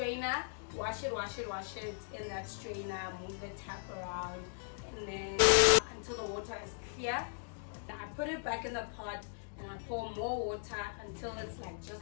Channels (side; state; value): right; silent; digital silence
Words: wash it in that strainer, move the tap around, and then until the water is clear. I put it back in the pot and I pour more water until it's like just